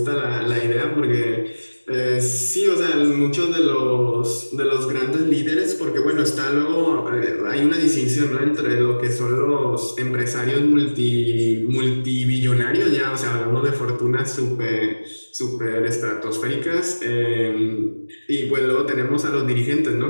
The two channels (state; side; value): inverted; both; correlation -1.00